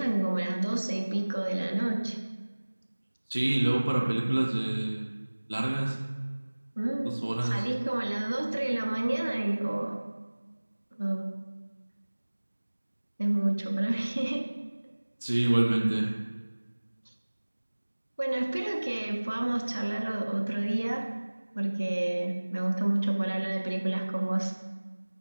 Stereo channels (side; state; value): both; inverted; correlation -1.00